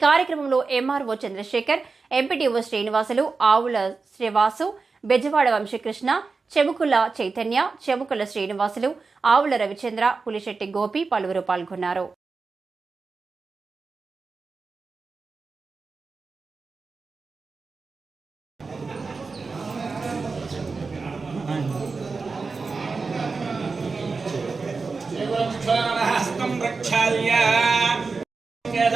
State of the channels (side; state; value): left; quieter; 4.4 dB